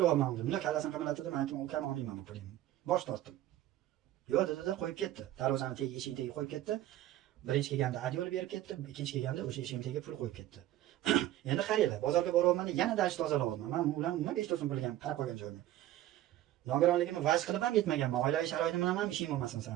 dedim. Bundoq kallasini qimirlatdi, men aytdim, ukam olmayman bu pulni. Bosh tortdim. Yo'q dedi-da, qo'yib ketdi. Darvozani tagiga, eshik tagiga qo'yib ketdi. Birinchi kelganda adyol berib ketdi, ikkinchi kelganda o'sha eshik tagiga pul qo'yib ketdi. Endi qaranglar, bozorga boryapman, yana dash tozalayapman. Men ular nima 5 so'm pulga qarab qo'ygan joyim. Nogironligimni vaj qilib ham yetmaganman. Oilaviy sharoitim bilan ham ishim bo'lmasin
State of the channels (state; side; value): quieter; left; 13.8 dB